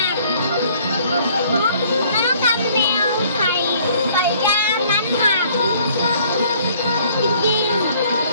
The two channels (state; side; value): inverted; both; correlation -0.59